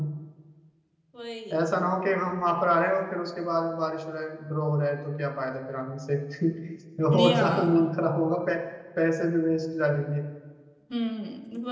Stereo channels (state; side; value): identical; both; correlation 1.00